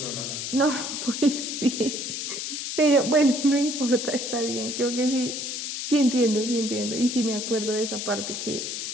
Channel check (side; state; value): left; noise; hiss, 4 dB below the sound